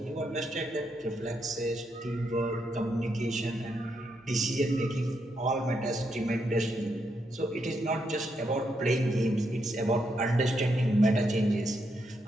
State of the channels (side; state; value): both; normal; correlation 0.80